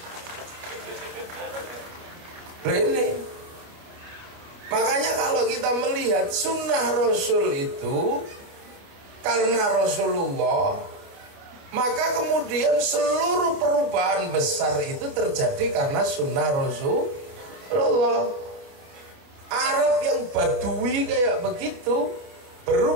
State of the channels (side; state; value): left; late; 29 ms